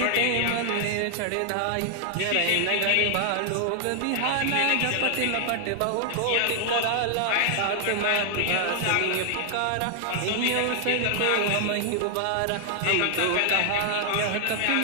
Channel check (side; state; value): both; different; correlation 0.00